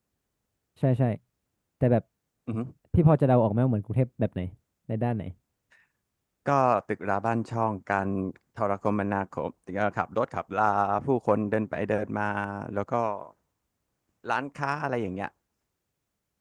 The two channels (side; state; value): both; identical; correlation 1.00